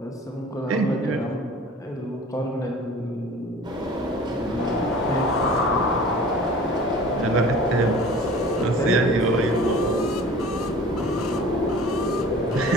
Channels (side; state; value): both; normal; correlation 0.44